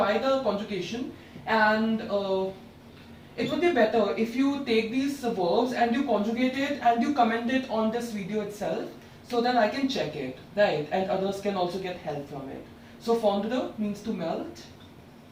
the conjugation, and it would be better if you take these verbs and you conjugate it and you comment it on this video itself, so that I can check it, right, and others can also get help from it. So fondre means to melt,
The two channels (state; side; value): identical; both; correlation 1.00